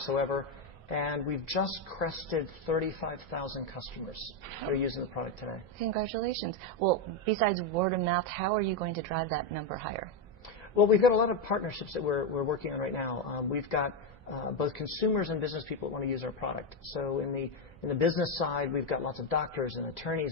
And we've just crested 35,000 customers that are using the product today. Congratulations. Well, besides word of mouth, how are you going to drive that number higher? Well, we've got a lot of partnerships that we're working on right now. We've got both consumers and business people that want to use our product. So in the business side, we've got lots of doctors and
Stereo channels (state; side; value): normal; both; correlation 0.07